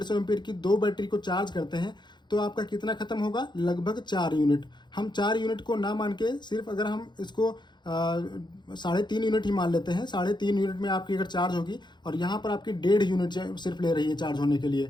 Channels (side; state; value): right; late; 0.21 ms